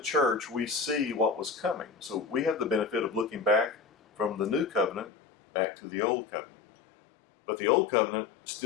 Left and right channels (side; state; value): right; drops out; at 5.1 s